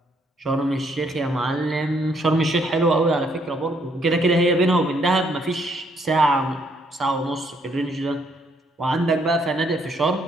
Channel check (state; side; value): normal; both; correlation 0.70